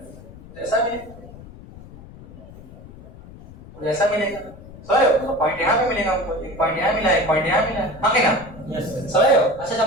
ऐसा भी ऐसा मिलेगा, समझ हो। पॉइंट यहाँ पे मिलेगा हमको, एक पॉइंट यहाँ मिला, एक पॉइंट यहाँ मिला, हाँ कि ना, समझ हो। अच्छा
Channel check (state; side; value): noise; left; rumble, 18 dB below the sound